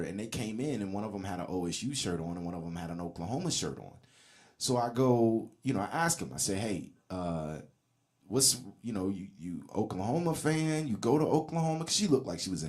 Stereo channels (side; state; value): both; identical; correlation 1.00